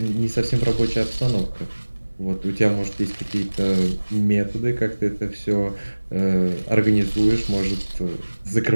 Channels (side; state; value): both; inverted; correlation -1.00